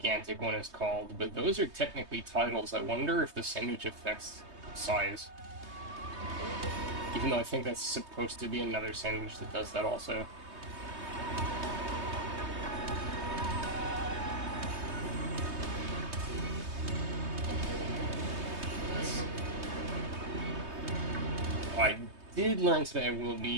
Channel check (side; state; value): left; late; 3.2 ms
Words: one is called, but those are technically titles. I wonder if the sandwich affects size. Even though I think that's supposed to be another sandwich that does that also. I did learn today I will